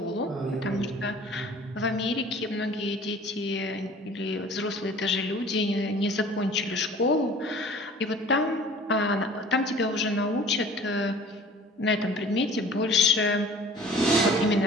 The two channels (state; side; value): normal; both; correlation 0.47